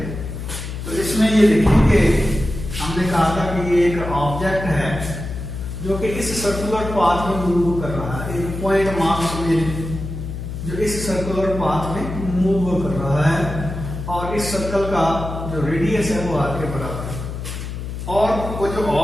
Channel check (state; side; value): noise; left; hum, 7 dB below the sound